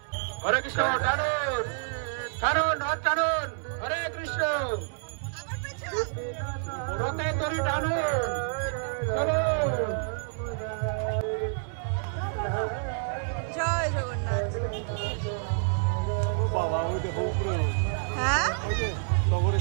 হরে কৃষ্ণ, টানুন টানুন রথ টানুন, হরে কৃষ্ণ। আবার পাইছো? রথে তরি টানুন, চলুন। জয় জগন্নাথ। হ্যাঁ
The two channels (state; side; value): silent; left; 59 dB below the other